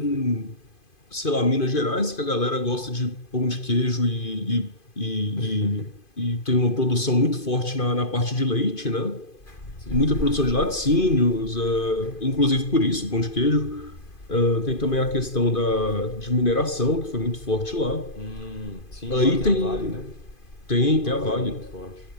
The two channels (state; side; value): late; right; 2.5 ms